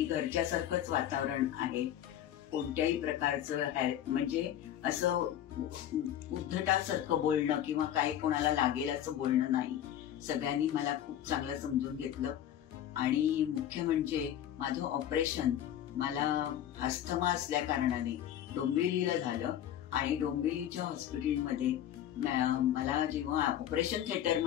घरच्यासारखंच वातावरण आहे. कोणत्याही प्रकारचं म्हणजे असं उद्धटासारखं बोलणं किंवा काही कोणाला लागेल असं बोलणं नाही. सगळ्यांनी मला खूप चांगलं समजून घेतलं. आणि मुख्य म्हणजे माझं ऑपरेशन मला अस्थमा असल्या कारणाने डोंबिवलीला झालं आणि डोंबिवलीच्या हॉस्पिटलमध्ये मला जेव्हा ऑपरेशन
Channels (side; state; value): right; quieter; 11.0 dB